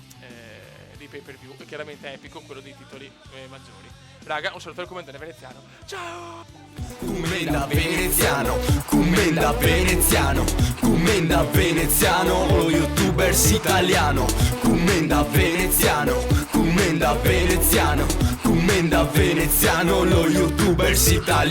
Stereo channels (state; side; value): identical; both; correlation 1.00